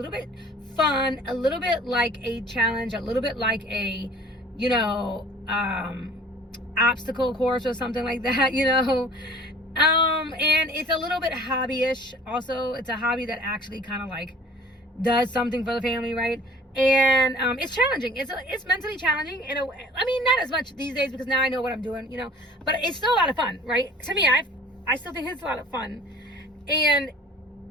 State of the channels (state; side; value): normal; both; correlation 0.49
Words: bit fun, a little bit like a challenge, a little bit like a, you know, obstacle course or something like that, you know. And it's a little bit hobbyish. Also, it's a hobby that actually kind of like does something for the family, right? And it's challenging. It's mentally challenging in a way. I mean, not as much these days because now I know what I'm doing, you know, but it's still a lot of fun, right? To me, I still think it's a lot of fun. And